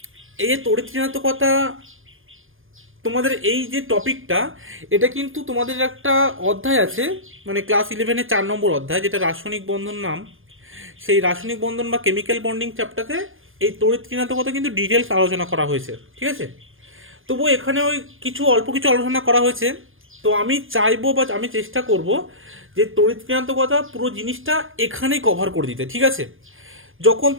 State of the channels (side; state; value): left; late; 0.59 ms